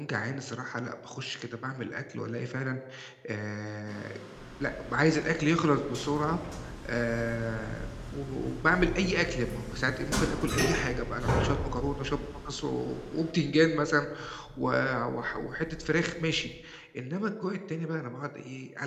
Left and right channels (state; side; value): identical; both; correlation 1.00